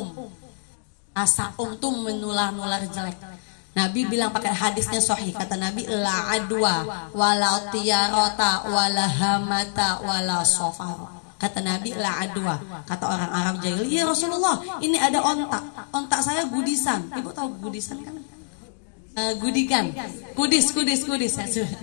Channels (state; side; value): silent; right; digital silence